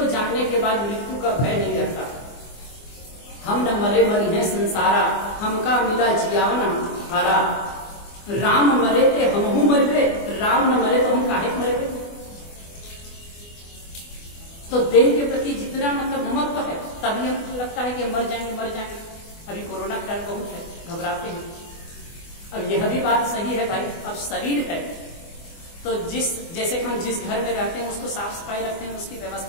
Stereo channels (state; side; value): late; right; 24 ms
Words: जानने के बाद मृत्यु का भय नहीं रहता। हम न मरे मरी है संसारा, हमका मिला जियावना हारा, राम मरे थे हमहू मर गए, राम न मरे तो हम काहे मर गए। तो देह के प्रति जितना मतलब ममत्व है, तभी हमको लगता है कि हम मर जाएंगे मर जाएंगे। अभी कोरोना का टाइम बहुत है, घबराते हैं। अब यह भी बात सही है भाई, अब शरीर है तो जैसे कि हम जिस घर में रहते हैं उसको साफ सफाई रखते हैं, उसकी